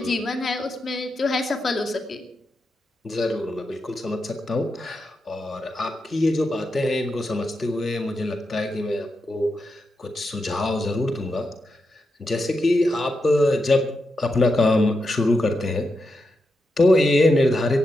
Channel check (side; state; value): both; normal; correlation 0.86